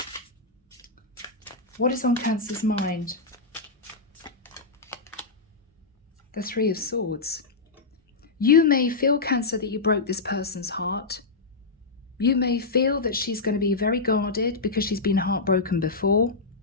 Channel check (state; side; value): quieter; right; 3.9 dB